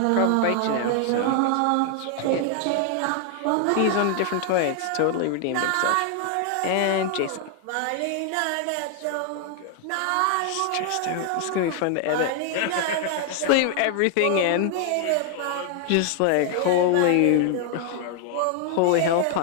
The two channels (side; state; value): both; different; correlation 0.00